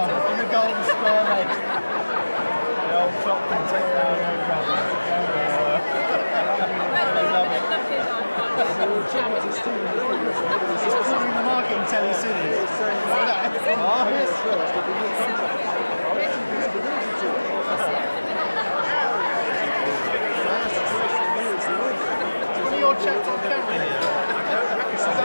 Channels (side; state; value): both; inverted; correlation -1.00